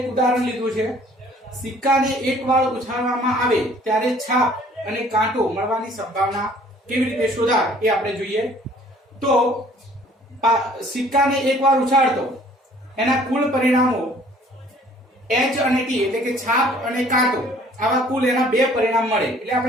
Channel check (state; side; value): normal; both; correlation 0.55